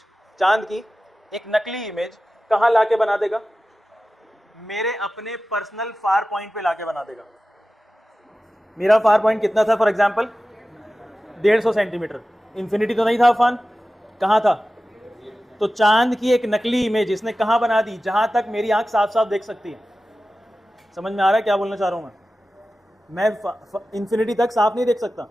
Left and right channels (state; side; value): normal; both; correlation 0.95